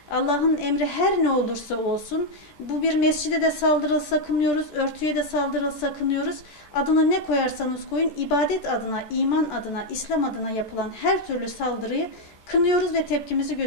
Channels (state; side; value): late; right; 14 ms